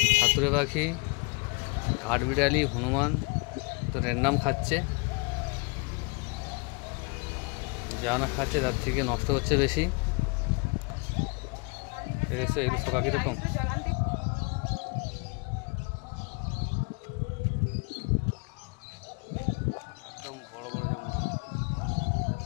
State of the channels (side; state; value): right; quieter; 30.7 dB